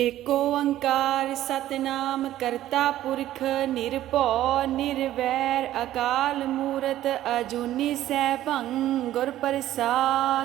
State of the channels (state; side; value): quieter; left; 13.5 dB